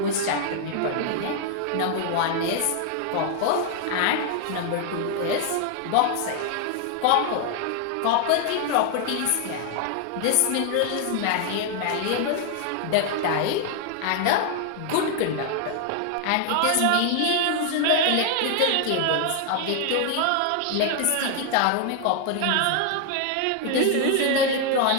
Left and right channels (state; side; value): different; both; correlation 0.00